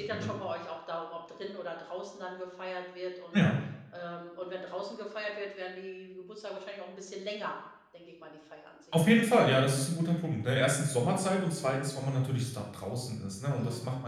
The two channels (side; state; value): both; identical; correlation 1.00